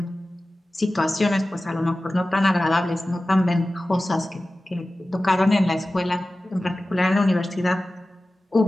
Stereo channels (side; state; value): both; normal; correlation 0.96